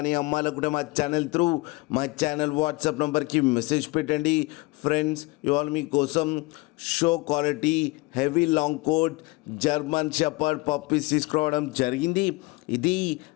అమ్మాలనుకుంటే మా ఛానల్ త్రూ మా ఛానల్ వాట్సాప్ నెంబర్కి మెసేజ్ పెట్టండి. ఫ్రెండ్స్, ఇవాళ మీకోసం show quality heavy long coat German shepherd puppies తీసుకురావడం జరిగింది. ఇది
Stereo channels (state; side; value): quieter; right; 24.3 dB